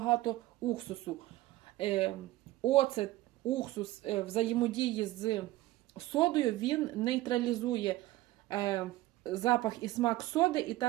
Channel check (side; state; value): left; quieter; 17.0 dB